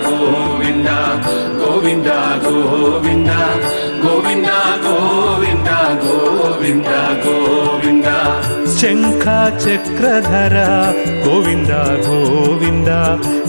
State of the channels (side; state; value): both; inverted; correlation -1.00